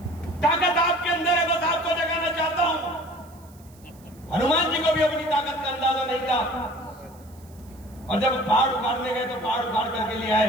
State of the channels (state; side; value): noise; right; hiss, 27 dB below the sound